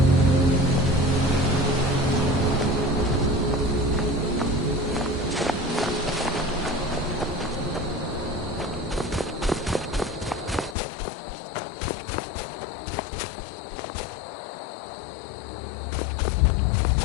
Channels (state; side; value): drops out; right; at 10.8 s